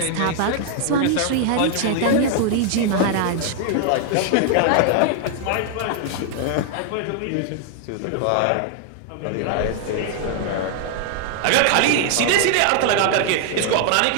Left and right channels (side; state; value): both; different; correlation 0.00